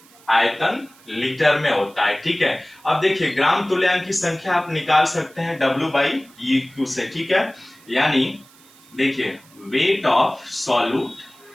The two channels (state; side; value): noise; right; hiss, 26 dB below the sound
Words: आयतन लीटर में होता है। ठीक है, अब देखिए ग्राम तुल्यांक की संख्या आप निकाल सकते हैं W/EQ से। ठीक है, यानी देखिए वेट ऑफ सॉल्यूट,